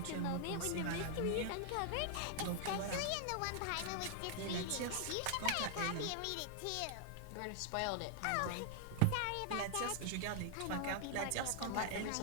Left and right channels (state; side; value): different; both; correlation 0.00